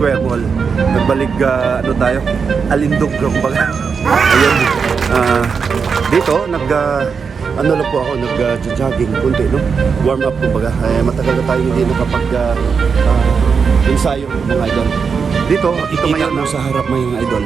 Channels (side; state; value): left; quieter; 5.8 dB